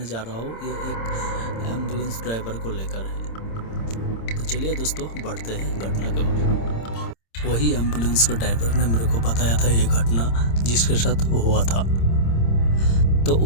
जा रहा हूँ ये एक एम्बुलेंस ड्राइवर को लेकर है। तो चलिए दोस्तों बढ़ते हैं घटना के बारे। वही एम्बुलेंस के ड्राइवर ने मेरे को बताया था ये घटना जिसके साथ हुआ था। तो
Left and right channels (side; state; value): right; late; 26 ms